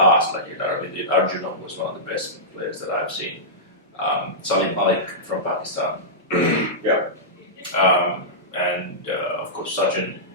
like Arjuna was one of the best players that I've seen. Salim Malik from Pakistan. Yeah. And of course Sachin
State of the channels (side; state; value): both; normal; correlation -0.15